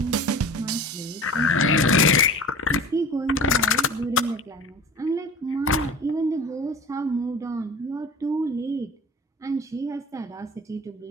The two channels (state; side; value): normal; both; correlation 0.39